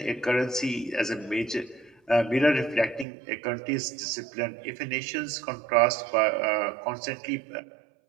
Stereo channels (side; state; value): left; drops out; at 3.1 s